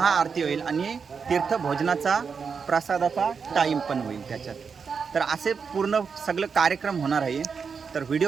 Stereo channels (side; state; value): left; quieter; 5.8 dB